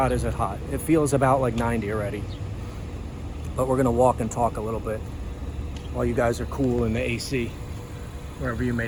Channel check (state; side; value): identical; both; correlation 1.00